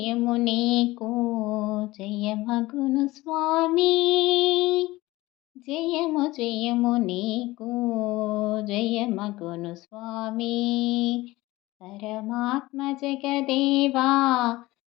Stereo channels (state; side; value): quieter; right; 19.2 dB